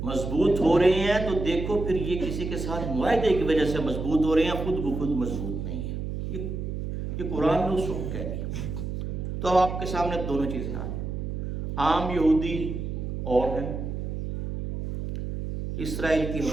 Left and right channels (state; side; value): noise; right; hum, 4 dB below the sound